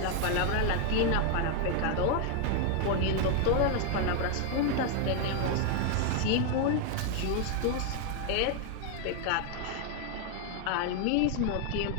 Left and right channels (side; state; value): both; different; correlation 0.00